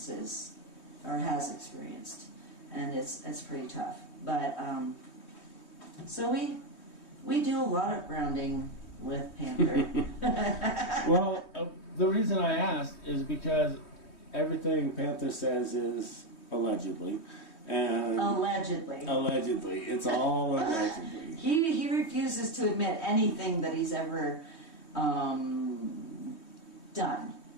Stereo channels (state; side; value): late; right; 3.2 ms